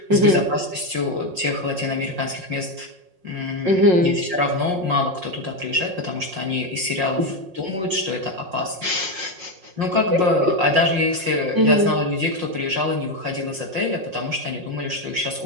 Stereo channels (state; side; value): late; left; 5.5 ms